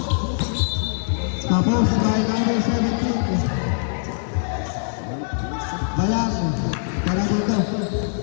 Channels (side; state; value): right; silent; 61 dB below the other